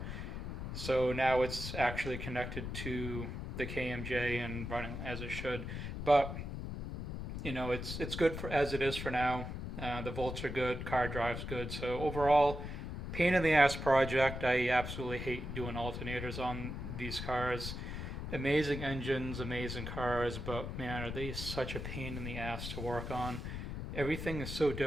So now it's actually connected to the KMJ and running as it should. But it's good for as it is for now. The volts are good, car drives good. So overall, pain in the ass project. I absolutely hate doing alternators on these cars. amazing engines, amazing cars, but man, are they such a pain in the ass to work on. Everything is so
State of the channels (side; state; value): left; noise; rumble, 6 dB below the sound